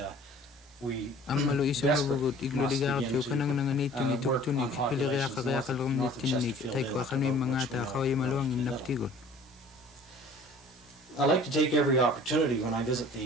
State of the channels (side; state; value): both; normal; correlation 0.49